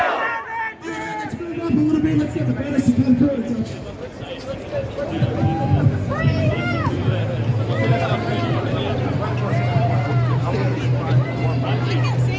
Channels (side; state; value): both; identical; correlation 1.00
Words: Alright, let's move up a little bit, let's get the banners to come through.